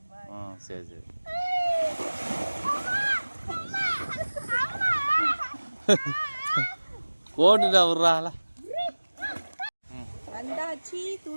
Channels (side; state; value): both; inverted; correlation -1.00